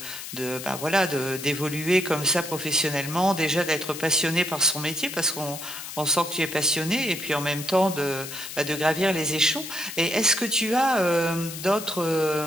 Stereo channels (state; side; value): noise; left; hiss, 10 dB below the sound